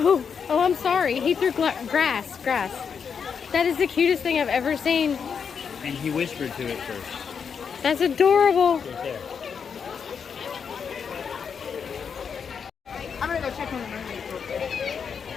I'm sorry. He threw grass. That is the cutest thing I've ever seen. And he whispered to it first. That's adorable. Right there. I'm gonna go check on the mermaids real quick.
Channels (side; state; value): right; quieter; 6.6 dB